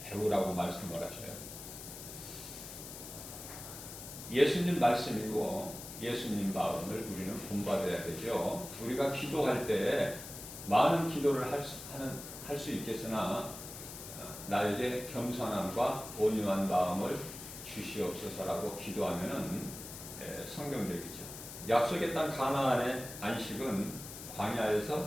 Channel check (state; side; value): noise; left; hiss, 11 dB below the sound